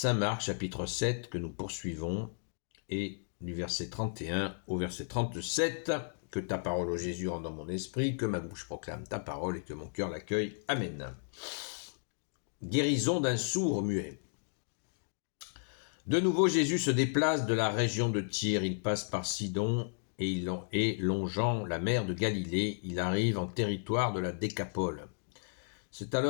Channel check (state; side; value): silent; right; digital silence